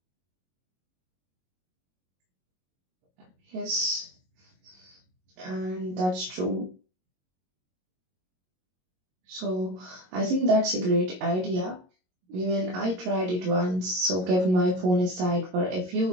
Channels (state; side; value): late; left; 22 ms